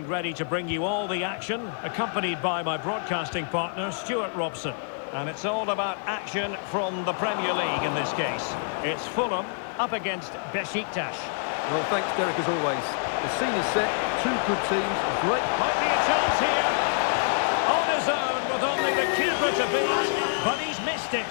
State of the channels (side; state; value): right; silent; digital silence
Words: ready to bring you all the action, accompanied by my broadcasting partner, Stuart Robson. And it's all about action from the Premier League in this case. It's Fulham up against Beşiktaş. Well, thanks, Derek, as always. The scene is set, two good teams, a great... Might be a chance here. On his own with only the keeper to beat, but he's missed it,